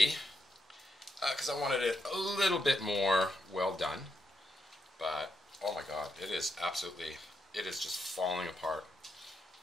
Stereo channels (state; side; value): normal; both; correlation 0.82